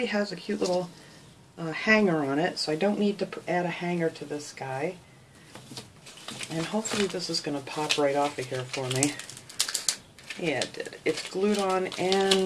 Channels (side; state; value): both; identical; correlation 1.00